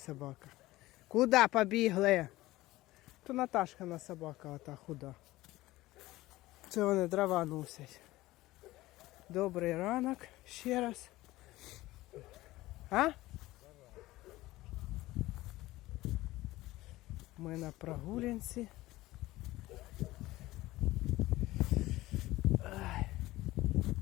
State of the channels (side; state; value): right; quieter; 17.9 dB